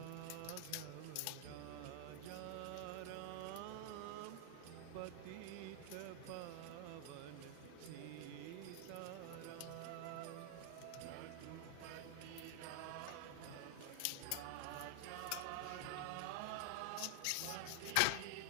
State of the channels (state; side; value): different; both; correlation 0.00